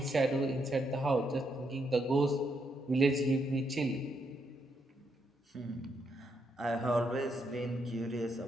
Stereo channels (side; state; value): both; normal; correlation 0.78